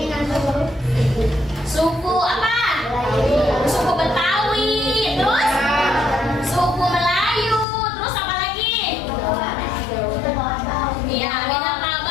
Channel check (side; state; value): right; drops out; at 7.7 s